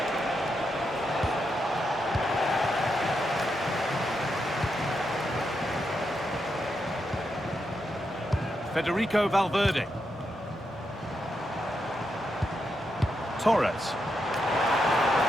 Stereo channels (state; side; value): normal; both; correlation 0.83